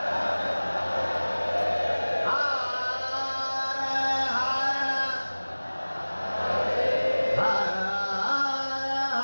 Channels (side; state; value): both; inverted; correlation -1.00